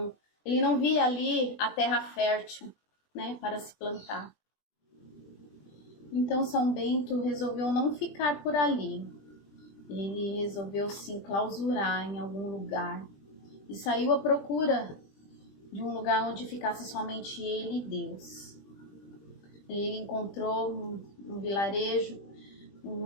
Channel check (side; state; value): right; late; 20 ms